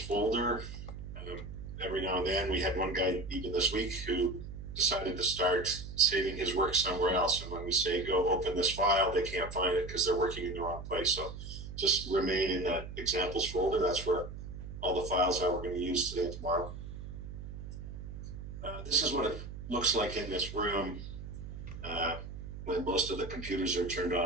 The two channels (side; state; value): right; noise; hum, 10 dB below the sound